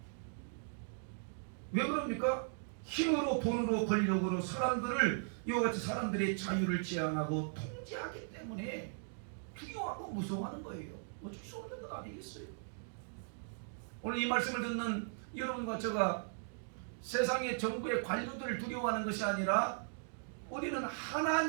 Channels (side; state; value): left; silent; digital silence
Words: 왜 그럽니까? 힘으로, 돈으로, 권력으로 사람들을, 이와 같이 사람들의 자유를 제한하고 통제하기 때문에 두려워하고 무서워하는 거예요. 어쩔 수 없는 것 아니겠어요? 오늘 이 말씀을 듣는 여러분과 제가 세상의 정부의 관료들을 두려워하는 것이 아니라 우리는